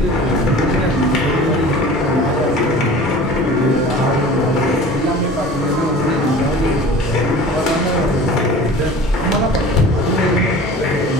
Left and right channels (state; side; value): normal; both; correlation 0.41